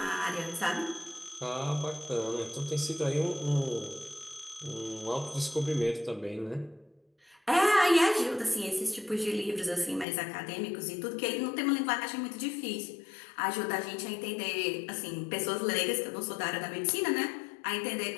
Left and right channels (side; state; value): right; drops out; at 10.1 s